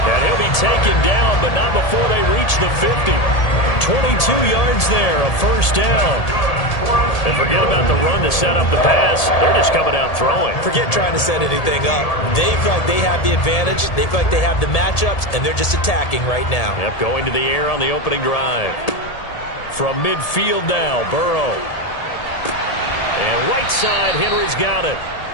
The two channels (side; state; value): right; late; 1.8 ms